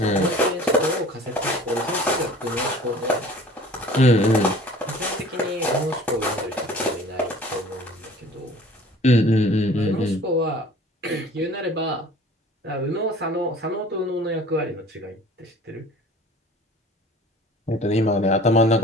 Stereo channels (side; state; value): both; normal; correlation 0.47